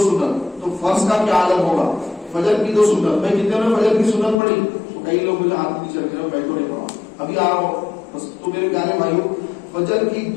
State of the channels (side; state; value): right; drops out; at 4.4 s